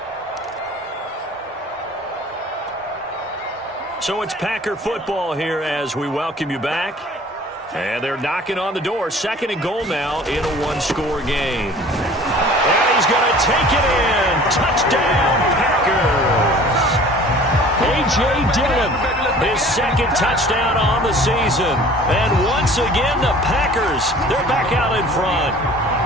So it's Packer football here as we welcome you back. And they're knocking on the door. 2nd and goal now in a 1-score game. And he's going to take it in. Touchdown, Packers. A.J. Dillon, his 2nd touchdown on the season. And once again, the Packers, they're back out in front.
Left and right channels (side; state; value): both; normal; correlation 0.47